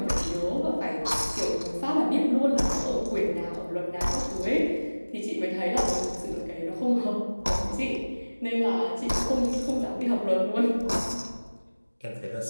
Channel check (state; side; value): inverted; both; correlation -1.00